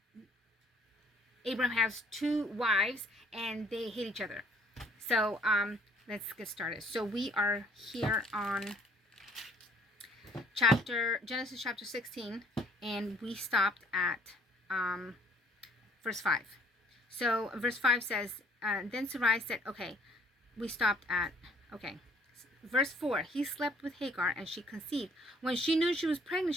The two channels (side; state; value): both; normal; correlation 0.60